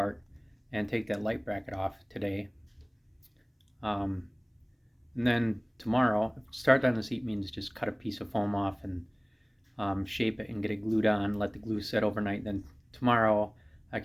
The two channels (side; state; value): both; identical; correlation 1.00